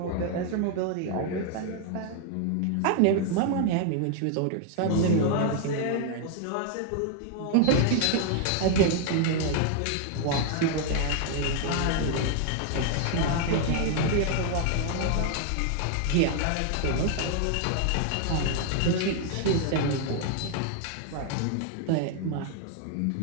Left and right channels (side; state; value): both; different; correlation 0.00